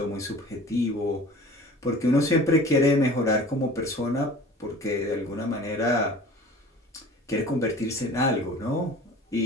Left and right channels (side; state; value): both; normal; correlation 0.43